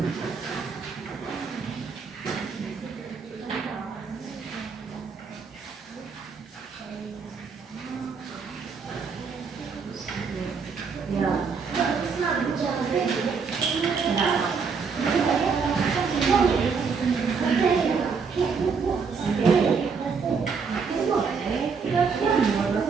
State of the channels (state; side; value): quieter; left; 5.5 dB